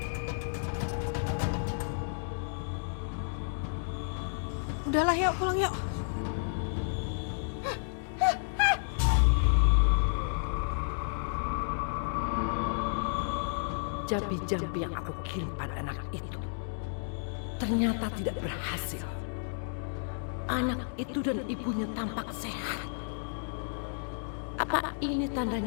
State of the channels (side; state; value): right; silent; digital silence